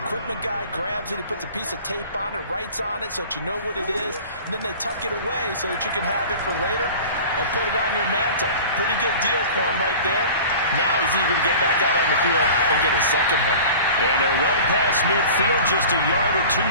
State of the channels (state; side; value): inverted; both; correlation -0.40